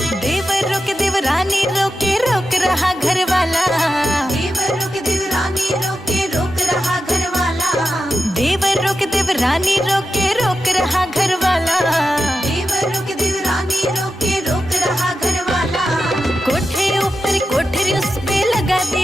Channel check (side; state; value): both; normal; correlation 0.90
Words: देवर रोके देवरानी रोके रोक रहा घर वाला। देवर रोके देवरानी रोके रोक रहा घर वाला। देवर रोके देवरानी रोके रोक रहा घर वाला। देवर रोके देवरानी रोके रोक रहा घर वाला। कोठे ऊपर कोठरी उस पे लगा